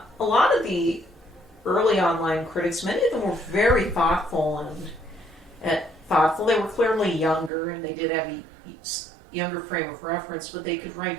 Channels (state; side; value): drops out; left; at 7.5 s